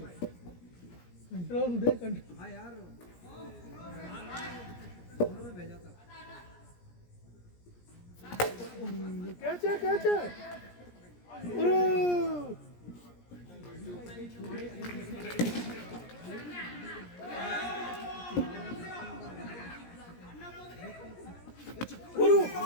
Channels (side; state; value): right; late; 17 ms